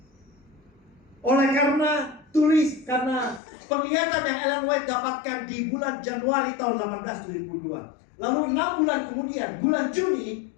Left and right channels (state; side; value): drops out; right; at 3.4 s